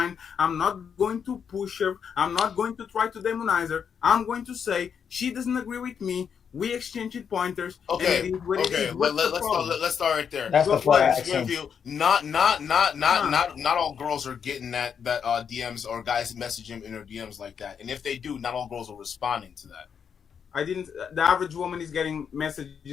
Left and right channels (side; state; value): right; quieter; 7.2 dB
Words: I'm not going to push her. I'm not going to try to demonize her. I'm going to say she doesn't agree with me. We exchanged pointers. Okay, and it is what it is. let's start right there. That's the part I Let's asked give him. you not all girls are getting that DMs or guys message him in their DMs like that. And if they do, not all girls are responding to that. I didn't. The average woman is getting